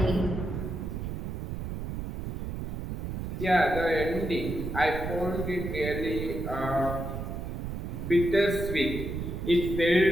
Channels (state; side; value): noise; right; rumble, 5 dB below the sound